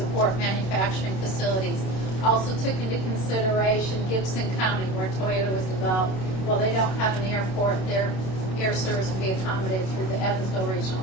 manufacturing facilities. Also took into consideration Gibson County, where Toyota was developed. Well, they don't have an airport. Their air service will be accommodated through the Evansville Regional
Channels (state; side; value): late; right; 27 ms